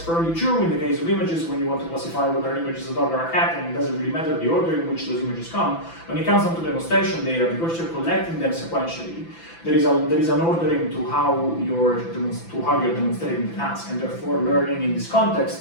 true in the case of images, when you want to classify whether an image is a dog or a cat, and it doesn't really matter the order in which those images come, when it comes down to demonstration data, because you're collecting them sequentially, there is an ordering to how you're demonstrating the task, and therefore learning in this context,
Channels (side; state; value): right; late; 5.9 ms